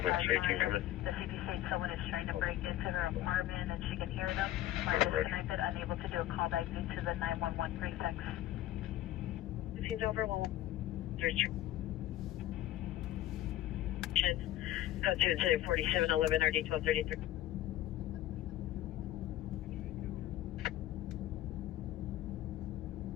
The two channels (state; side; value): quieter; right; 13.8 dB